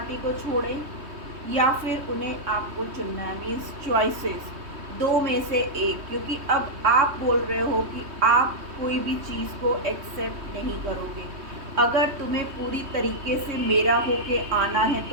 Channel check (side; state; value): left; late; 3.2 ms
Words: को छोड़ें या फिर उन्हें आपको चुनना है, मीन्स चॉइसेस, दो में से एक। क्योंकि अब आप बोल रहे हो कि आप कोई भी चीज़ को एक्सेप्ट नहीं करोगे। अगर तुम्हें पूरी तरीके से मेरा होके आना है